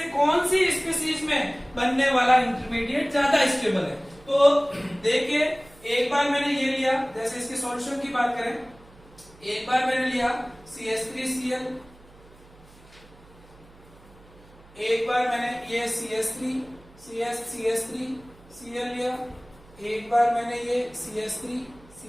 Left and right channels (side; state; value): right; noise; hum, 25 dB below the sound